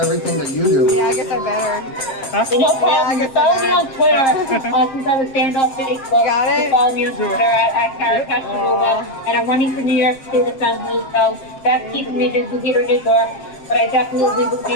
that you do. Yeah, I guess I better. No problem. Follow me on Twitter since I was banned off Facebook. Got it? Follow me on Twitter at Kara Castronova. And I'm running for New York State Assembly, so that's keeping me busy here in New York. But I definitely will be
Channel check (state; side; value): late; right; 7.5 ms